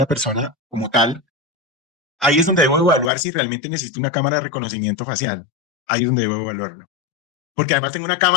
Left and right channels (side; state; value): right; drops out; at 3.1 s